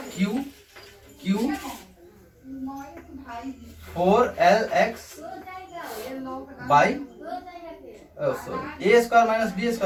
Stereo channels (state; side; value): identical; both; correlation 1.00